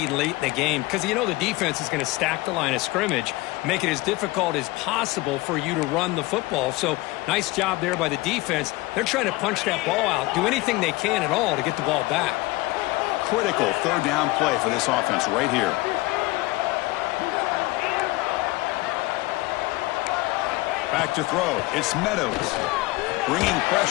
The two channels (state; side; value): quieter; right; 21.1 dB